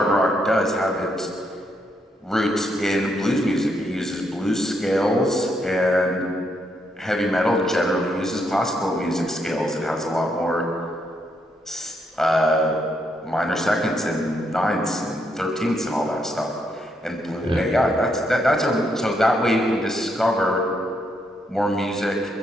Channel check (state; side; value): normal; both; correlation 0.77